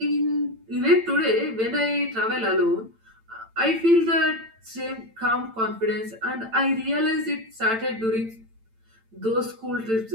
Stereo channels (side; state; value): left; late; 8.9 ms